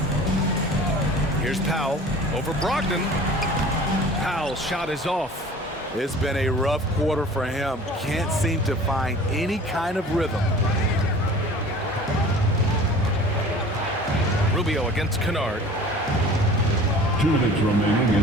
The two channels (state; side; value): normal; both; correlation 0.44